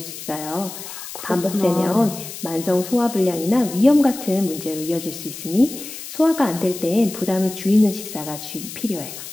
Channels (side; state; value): left; noise; hiss, 11 dB below the sound